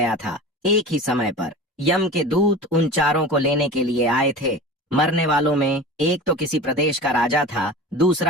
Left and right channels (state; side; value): normal; both; correlation 0.35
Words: था। एक ही समय पर यम के दूत उन चारों को लेने के लिए आए थे। मरने वालों में एक तो किसी प्रदेश का राजा था,